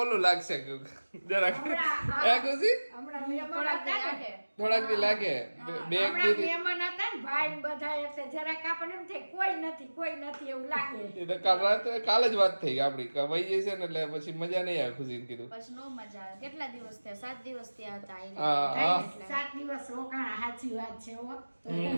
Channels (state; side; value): inverted; both; correlation -1.00